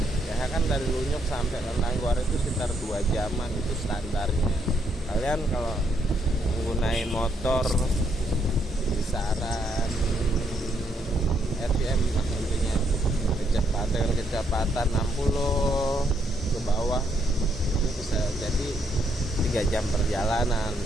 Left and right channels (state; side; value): normal; both; correlation 0.75